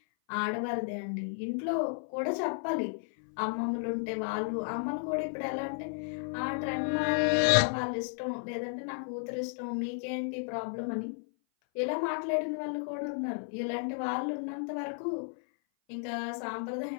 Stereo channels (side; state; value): right; silent; 56 dB below the other